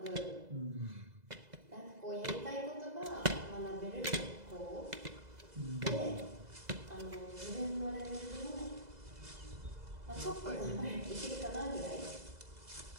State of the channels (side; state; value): left; late; 2.0 ms